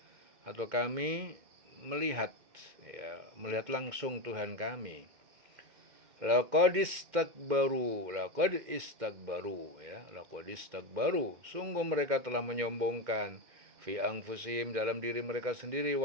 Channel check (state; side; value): late; left; 2.1 ms